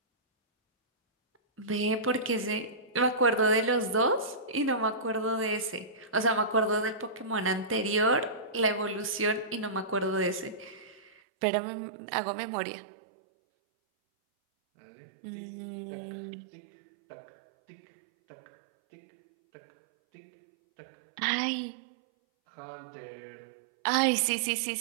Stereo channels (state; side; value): drops out; left; at 11.1 s